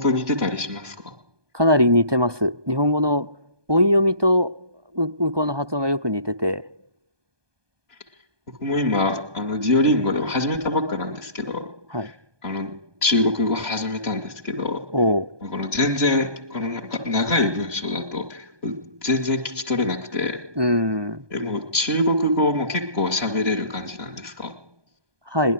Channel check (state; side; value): late; left; 1.2 ms